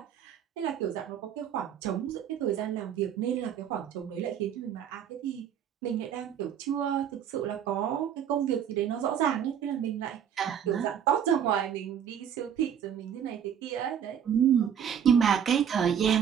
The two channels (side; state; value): left; quieter; 8.7 dB